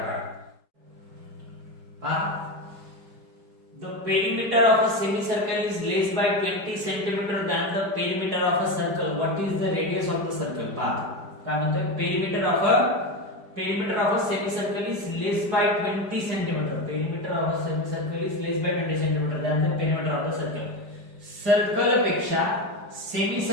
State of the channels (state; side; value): late; left; 5.0 ms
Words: पहा the perimeter of a semicircle is less by 20 centimeter than the perimeter of a circle. What is the radius of the circle? पहा काय म्हणतोय perimeter of a semicircle is less by 20 centimeter. Perimeter of a semicircle is less by 20 centimeter than the perimeter of the circle. Circle पेक्षा सेमी